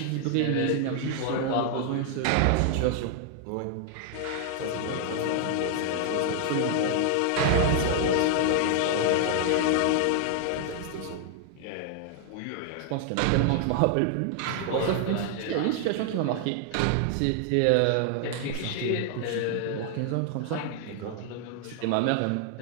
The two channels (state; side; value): different; both; correlation 0.00